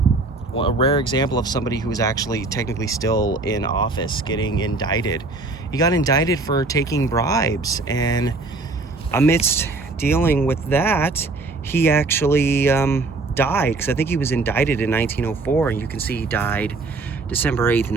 rare example of somebody who was actually technically still in office getting indicted. He got indicted for taking bribes, and amidst dealing with that, he actually died, because I think he was indicted in 1904, and you can see he died December 8th,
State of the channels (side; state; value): left; quieter; 3.4 dB